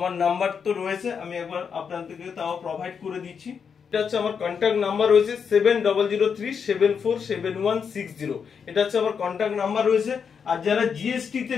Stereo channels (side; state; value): right; quieter; 6.6 dB